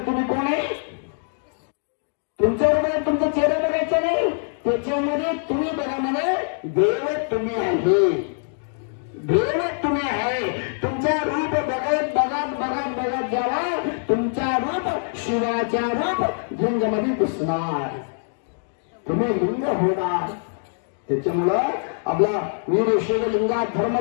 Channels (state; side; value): silent; right; digital silence